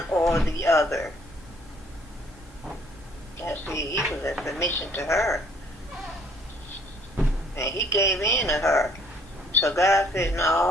or the other. Now see, he was in submission to her, and he gave in to her. So God said,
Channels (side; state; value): both; normal; correlation 0.61